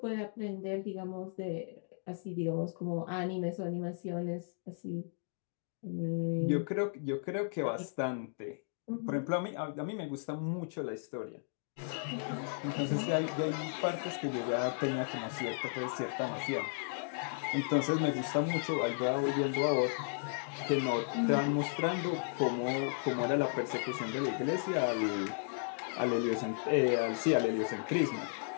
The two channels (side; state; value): right; silent; digital silence